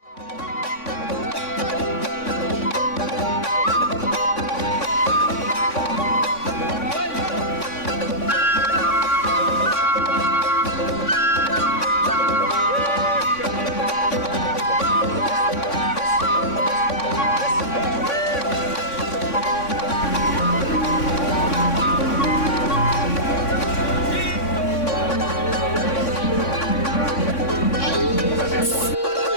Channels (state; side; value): late; right; 3.5 ms